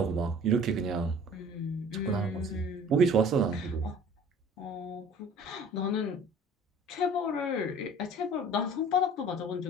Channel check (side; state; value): both; normal; correlation 0.48